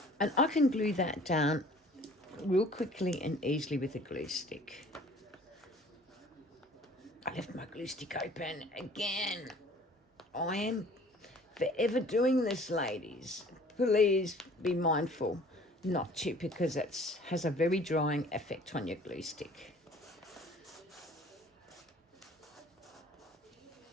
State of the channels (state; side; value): normal; both; correlation 0.51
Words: And I can glue that down real quickly and easily with a glue stick. I left my glue stick open again. I am forever doing this, ladies. Please be mindful not to, because it has a very drying effect on your glue stick.